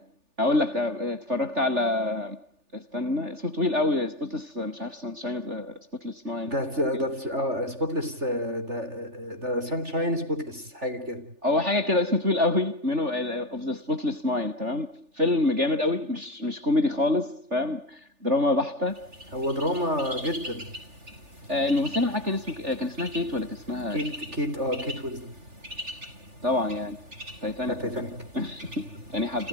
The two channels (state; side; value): late; left; 3.4 ms